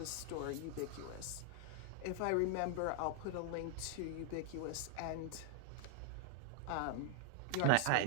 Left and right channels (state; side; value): different; both; correlation 0.00